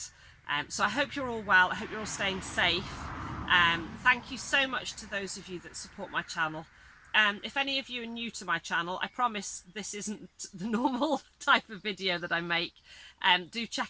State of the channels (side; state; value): both; identical; correlation 1.00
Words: So I hope you're all well. I hope you're all staying safe. Thank you so much to those of you that support my channel. If any of you are new to my channel, I promise this isn't the normal type of video that I make. Do